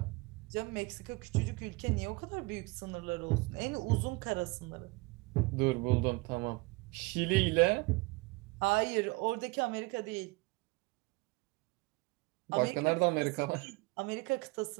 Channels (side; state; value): left; quieter; 25.2 dB